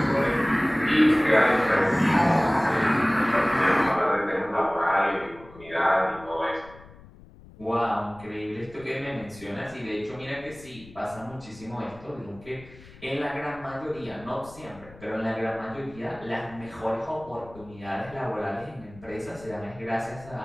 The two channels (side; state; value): left; noise; rumble, 21 dB below the sound